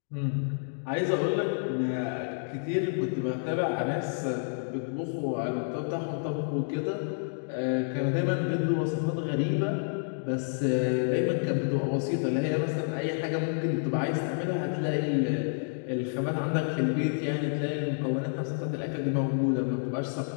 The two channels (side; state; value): right; silent; digital silence